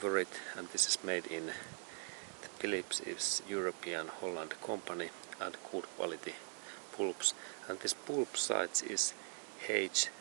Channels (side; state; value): left; silent; 50 dB below the other